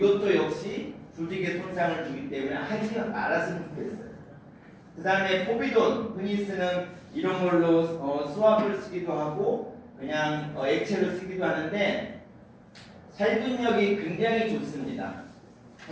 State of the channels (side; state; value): both; identical; correlation 1.00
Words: 역시 조직에 손상을 주기 때문에 하지 말았으면 좋겠어요. 그 다음에 포비돈 흔히 쓰는 이런 걸로 수압을 쓰기도 하고 그냥 액체로 쓰기도 하는데 살균력이 굉장히 좋습니다.